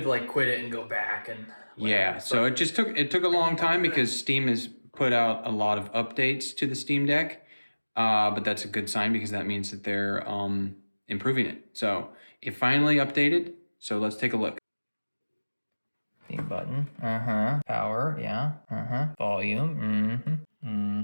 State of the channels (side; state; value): both; inverted; correlation -1.00